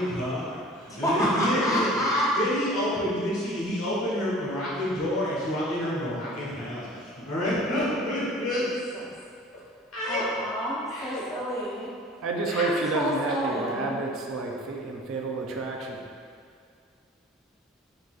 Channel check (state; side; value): normal; both; correlation 0.45